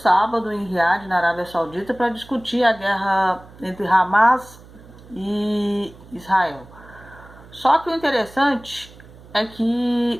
em Riad, na Arábia Saudita, para discutir a guerra entre Hamas e Israel. Só que o interessante é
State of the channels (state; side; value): noise; right; hum, 21 dB below the sound